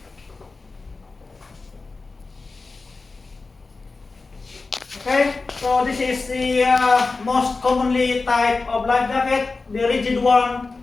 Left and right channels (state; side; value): quieter; right; 3.9 dB